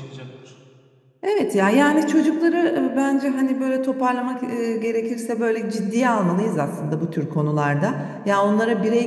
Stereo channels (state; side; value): identical; both; correlation 1.00